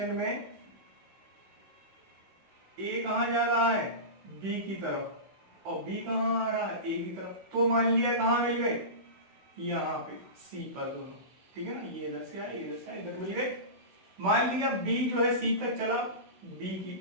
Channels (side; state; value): left; late; 16 ms